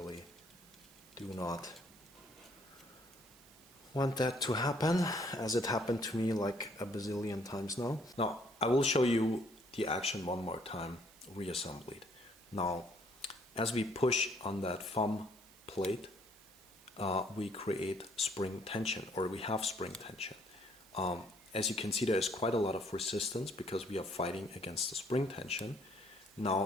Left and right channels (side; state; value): right; noise; hiss, 24 dB below the sound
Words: do not want that to happen, as it happened to me like a bazillion times now. Now, I will show you the action one more time, reassembled. Now, as we push on that thumb plate, we create spring tension, or we have spring tension. As you can see, there is quite a lot of resistance because we are fighting against the spring tension.